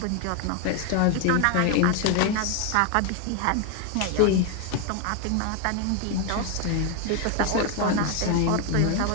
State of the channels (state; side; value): different; both; correlation 0.01